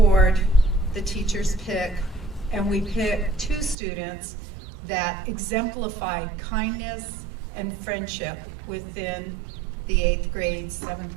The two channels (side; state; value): left; drops out; at 3.8 s